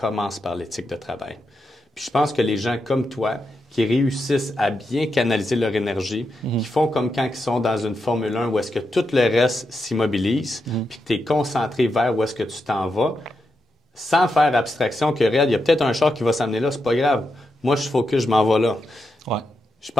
par l'éthique de travail. Puis je pense que les gens comme toi, qui réussissent à bien canaliser leur énergie, qui font comme quand ils sont dans une Formule 1 où est-ce que tout le reste s'immobilise, puis que tu es concentré vers où est-ce que tu t'en vas, sans faire abstraction que, regarde, il y a peut-être un char qui va s'amener là, c'est pas grave. Moi, je focus, je m'en vais là. Ouais. Je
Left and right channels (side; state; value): both; normal; correlation 0.86